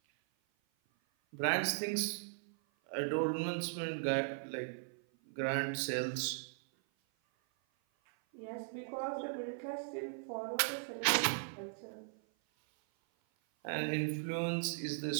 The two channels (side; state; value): left; silent; 52 dB below the other